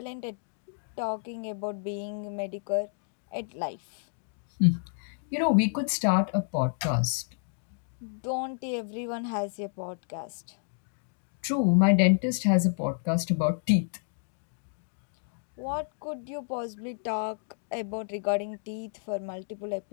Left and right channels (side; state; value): right; silent; digital silence